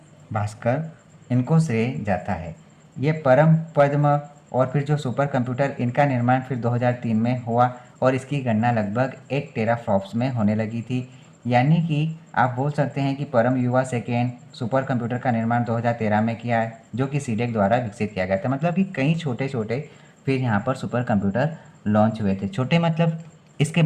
भास्कर, इनको श्रेय जाता है। ये परम, पद्म और फिर जो सुपर कंप्यूटर, इनका निर्माण फिर 2003 में हुआ और इसकी गणना लगभग 1 टेराफ्लॉप्स में होने लगी थी। यानी कि आप बोल सकते हैं कि परम युवा सेकेंड सुपर कंप्यूटर का निर्माण 2013 में किया है, जो कि सीडेक द्वारा विकसित किया गया था। मतलब कि कई छोटे छोटे फिर यहाँ पर सुपर कंप्यूटर लॉन्च हुए थे। छोटे मतलब इसके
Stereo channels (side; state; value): both; identical; correlation 1.00